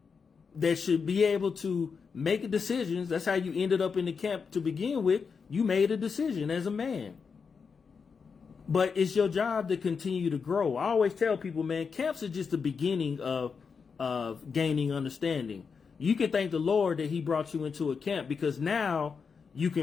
that should be able to make decisions. That's how you ended up in the camp to begin with. You made a decision as a man. But it's your job to continue to grow. I always tell people, man, camps are just the beginning of gaining understanding. You can thank the Lord that he brought you into a camp, because now you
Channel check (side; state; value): right; quieter; 5.6 dB